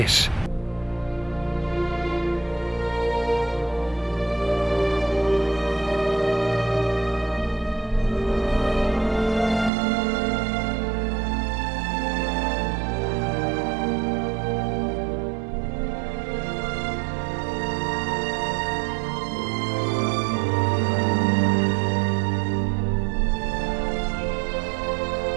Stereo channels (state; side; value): drops out; left; at 9.7 s